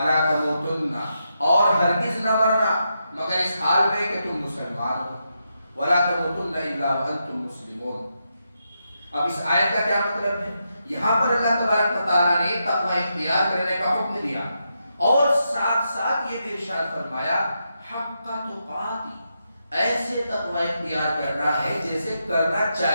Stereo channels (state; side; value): inverted; both; correlation -0.84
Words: تموتن، اور ہرگز نہ مرنا مگر اس حال میں کہ تم مسلمان ہو، وَلَا تَمُوتُنَّ إِلَّا وَأَنْتُمْ مُسْلِمُونَ۔ اب اس آیت کا کیا مطلب ہے؟ یہاں پر اللہ تبارک و تعالیٰ نے تقوی اختیار کرنے کا حکم دیا اور ساتھ ساتھ یہ بھی ارشاد فرمایا حق تقاتی، ایسے تقوی اختیار کرنا ہے جیسے کرنا